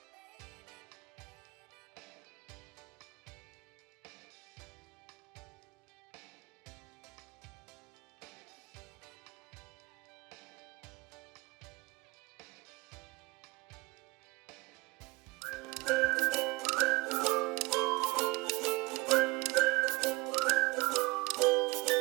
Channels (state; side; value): quieter; left; 23.7 dB